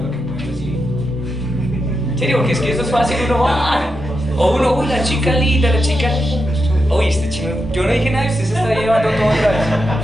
lo que puede recibir. En serio, porque es que eso es fácil, uno va. O uno, uy, la chica linda, la chica. Uy, este chino, yo no dije nada y usted se está llevando todo otra vez.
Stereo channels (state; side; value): normal; both; correlation 0.86